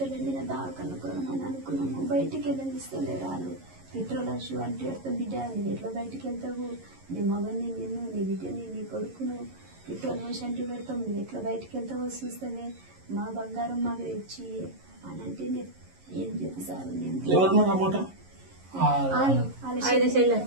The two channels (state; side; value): late; left; 11 ms